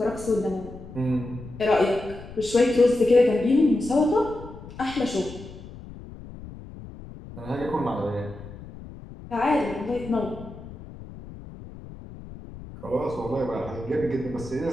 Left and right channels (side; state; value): left; noise; rumble, 15 dB below the sound